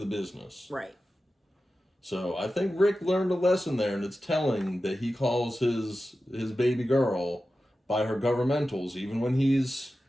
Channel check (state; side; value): normal; both; correlation 0.93